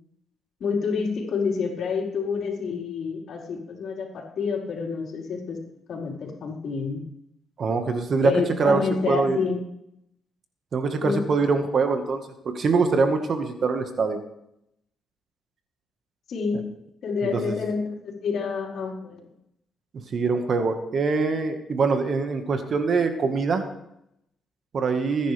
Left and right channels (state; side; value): normal; both; correlation 0.76